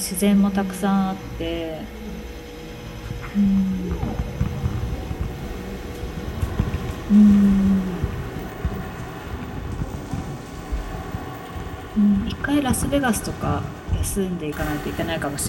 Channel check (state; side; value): identical; both; correlation 1.00